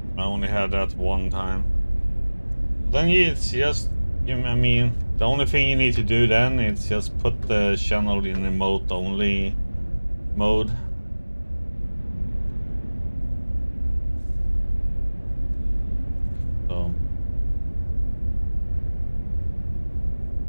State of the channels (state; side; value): inverted; both; correlation -1.00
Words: I only had that one time. Then it's just, I mean, the only thing you need to do then is just put the channel in remote only mode. So